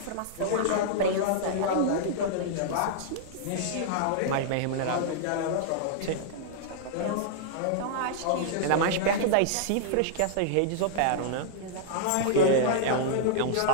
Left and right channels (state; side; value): different; both; correlation -0.01